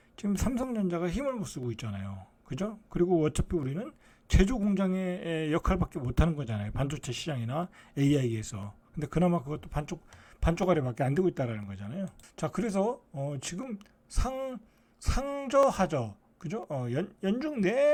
지금 삼성전자가 힘을 못 쓰고 있잖아요. 그죠? 그리고 어차피 우리는 제조 공장의 역할밖에 못하는 거잖아요. 반도체 시장이나 AI에서. 근데 그나마 그것도 반쪽아리밖에 안 되고 있다라는 거잖아요. 자, 그래서 지금 상저하저, 그죠? 연중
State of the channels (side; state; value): both; identical; correlation 1.00